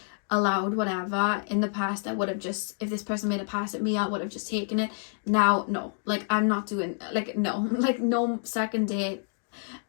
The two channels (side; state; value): right; silent; 59 dB below the other